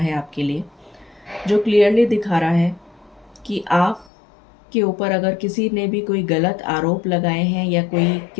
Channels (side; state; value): right; drops out; at 4.1 s